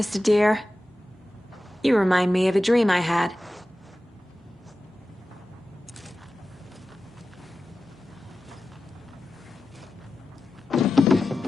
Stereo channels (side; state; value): both; normal; correlation 0.94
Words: Deer. You remind me of a dream I had.